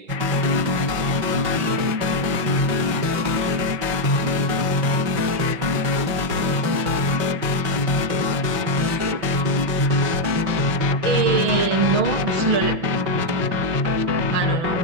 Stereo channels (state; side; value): late; left; 6.0 ms